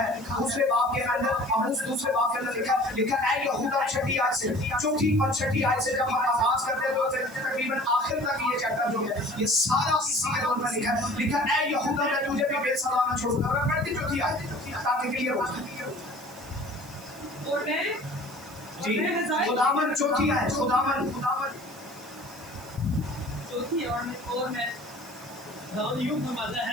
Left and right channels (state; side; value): noise; right; hiss, 21 dB below the sound